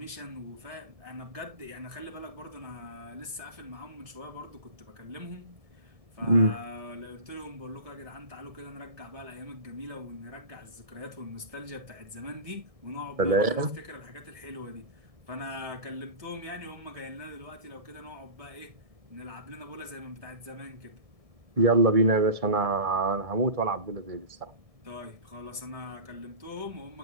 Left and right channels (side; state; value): left; late; 1.7 ms